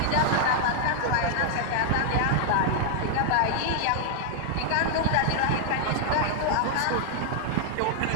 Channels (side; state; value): both; different; correlation 0.00